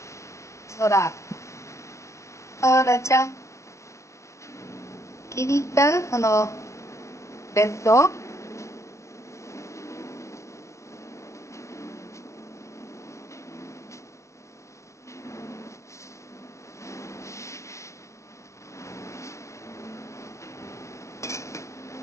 ほら、あらちゃん、気に入ったこのベッド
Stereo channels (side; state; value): right; late; 0.14 ms